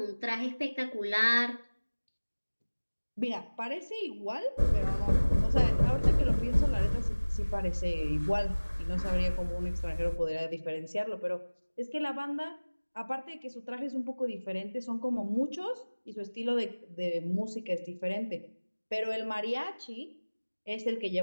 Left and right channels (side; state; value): both; inverted; correlation -1.00